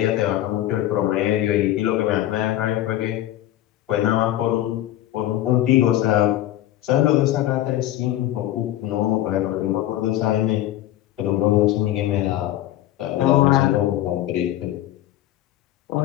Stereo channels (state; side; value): quieter; right; 13.9 dB